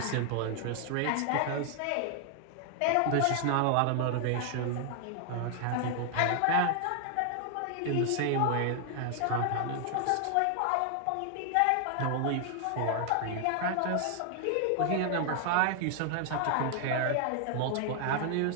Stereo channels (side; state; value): both; different; correlation 0.00